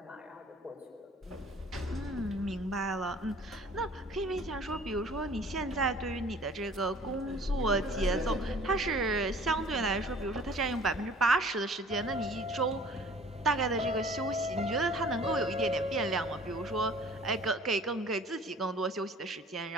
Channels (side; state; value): both; normal; correlation 0.50